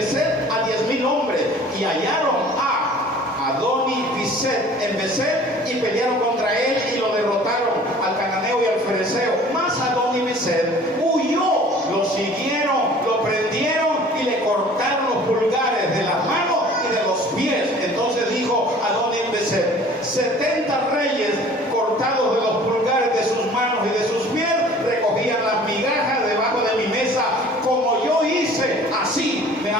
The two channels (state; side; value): normal; both; correlation 0.48